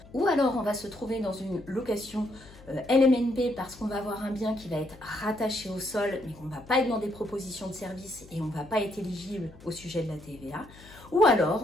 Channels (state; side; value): noise; left; hum, 21 dB below the sound